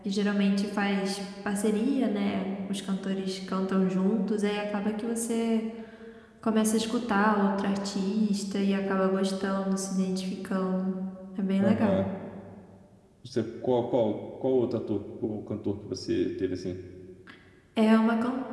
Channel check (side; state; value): both; identical; correlation 1.00